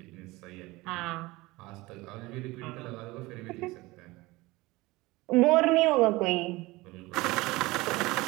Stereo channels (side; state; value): left; quieter; 21.3 dB